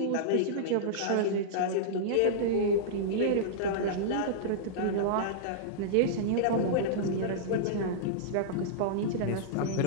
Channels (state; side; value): different; both; correlation -0.03